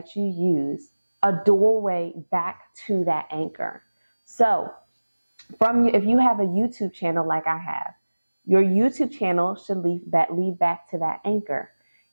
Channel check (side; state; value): both; inverted; correlation -1.00